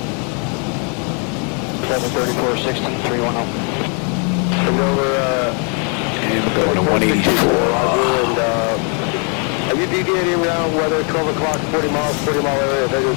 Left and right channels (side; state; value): right; quieter; 38.4 dB